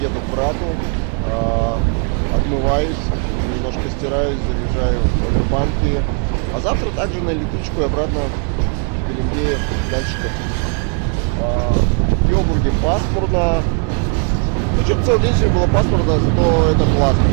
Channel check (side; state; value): left; quieter; 39.1 dB